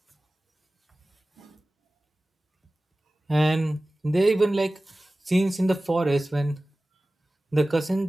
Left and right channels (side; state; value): both; normal; correlation 0.97